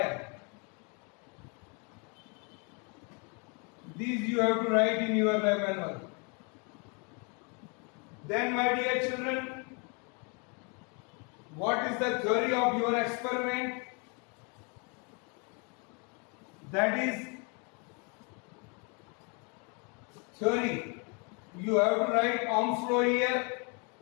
These you have to write in your lab manual. Then, my dear children, what is the theory of your experiment? That is theory. You have to write Ohm's law here,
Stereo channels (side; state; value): right; quieter; 34.2 dB